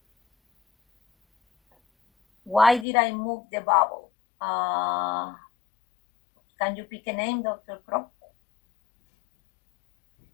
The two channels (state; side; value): drops out; right; at 2.9 s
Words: Why did I move the bubble? Can you pick a name, Dr. Crow?